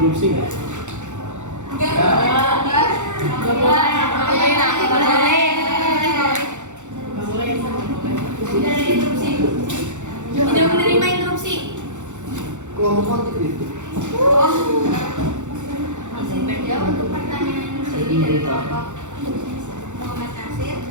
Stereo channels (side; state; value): left; late; 0.85 ms